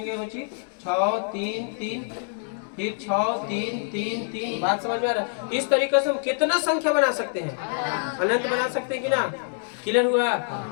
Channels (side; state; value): right; silent; digital silence